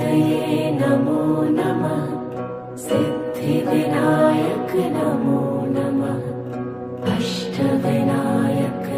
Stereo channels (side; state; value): both; identical; correlation 1.00